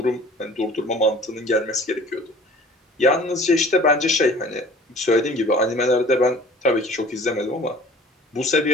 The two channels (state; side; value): normal; both; correlation 0.48